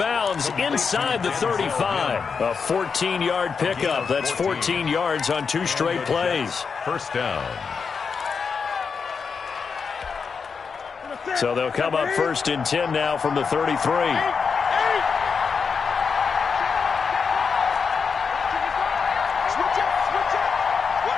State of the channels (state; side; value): quieter; right; 5.6 dB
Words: inside the 35. A 14-yard pickup. That's 14 yards on 2 straight plays. First down. So they'll come up first and 10 now from the 33.